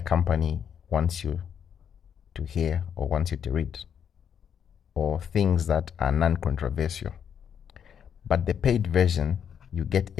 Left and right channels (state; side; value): quieter; right; 8.2 dB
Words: company wants you to hear or wants you to read, or things that are non-controversial. But the paid version, you get